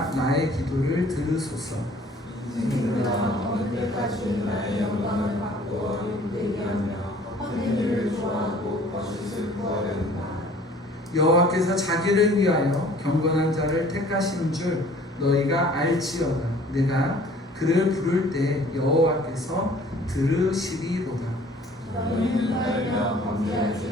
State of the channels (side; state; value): both; normal; correlation 0.52